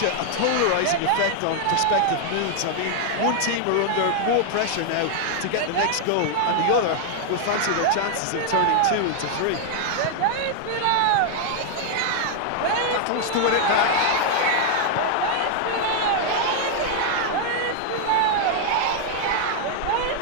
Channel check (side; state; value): both; different; correlation 0.00